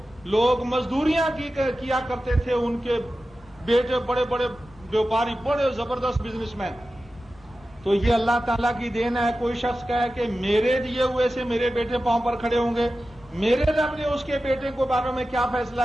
لوگ مزدوریاں کیا کرتے تھے ان کے بیٹے بڑے بڑے بیوپاری، بڑے زبردست بزنس مین۔ تو یہ اللہ تعالیٰ کی دین ہے۔ کوئی شخص کہے کہ میرے دیے ہوئے سے میرے بیٹے پاؤں پر کھڑے ہوں گے، میرے رب نے اس کے بیٹے کو بارے میں کیا فیصلہ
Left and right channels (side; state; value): both; normal; correlation 0.94